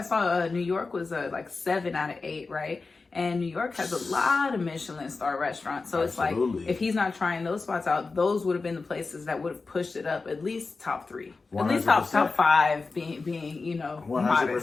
saw New York was like 7 out of 8, right? And New York has a lot of Michelin star restaurants. So it's like, if he's not trying those spots out, those would have been the places that would have pushed it up at least top 3. 100%. At least top 5 being you know, 100%,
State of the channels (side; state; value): right; quieter; 4.1 dB